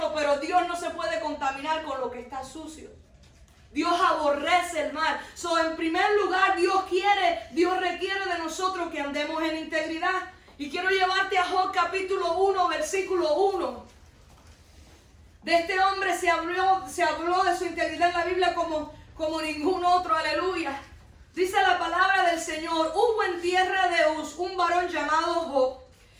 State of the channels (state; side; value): identical; both; correlation 1.00